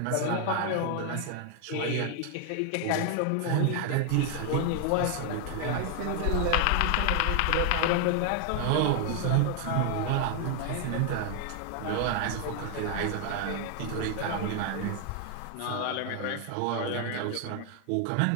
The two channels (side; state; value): both; different; correlation 0.00